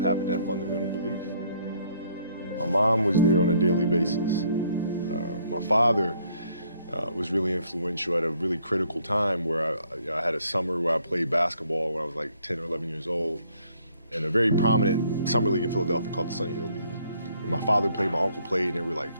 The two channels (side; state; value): both; inverted; correlation -0.66